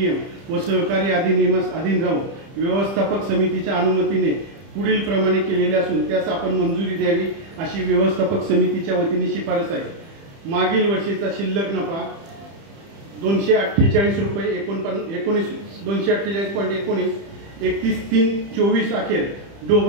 व सहकारी अधिनियमास अधीन राहून व्यवस्थापक समितीच्या अनुमतीने पुढील प्रमाणे केलेले असून त्यास आपण मंजुरी द्यावी अशी व्यवस्थापक समितीच्या वतीने शिफारस आहे. मागील वर्षीचा शिल्लक नफा 248 रुपये 248.19 31/3/24 अखेर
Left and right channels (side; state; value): left; late; 30 ms